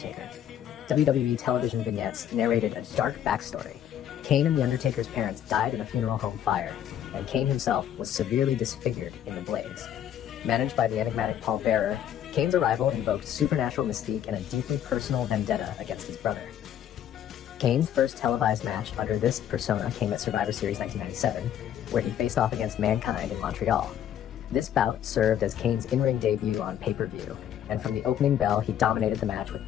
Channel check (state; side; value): quieter; right; 10.3 dB